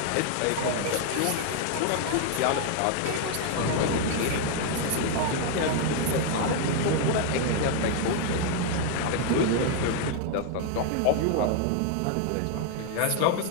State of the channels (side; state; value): both; different; correlation 0.00